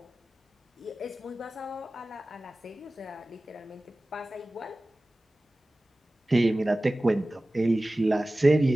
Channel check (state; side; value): normal; both; correlation 0.97